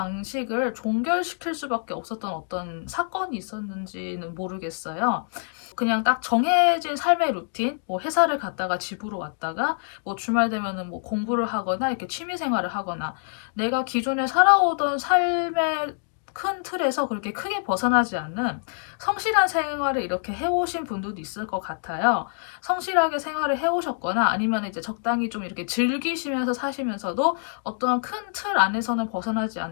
종결시킬 수밖에 없었던 어떤 사건이 있었는지는 모르겠어요. 그냥 딱 정해진 삶의 루틴, 뭐 회사를 갔다가 집으로 왔다가 뭐 주말 되면은 뭐 공부를 하거나 이렇게 취미 생활을 하거나 내가 기존에 살아오던 삶의 큰 틀에서 그렇게 크게 벗어나지 않는 성실한 생활을 이렇게 해오신 분들도 있을 것 같아요. 성실하게 생활을 해오셨거나 아니면 이제 적당히 좀 이렇게 즐기시면서 사시면서도 어떠한 큰 틀 안에서는 벗어나지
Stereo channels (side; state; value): right; silent; digital silence